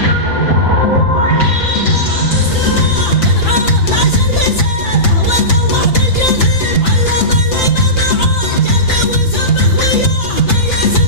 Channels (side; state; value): right; late; 5.9 ms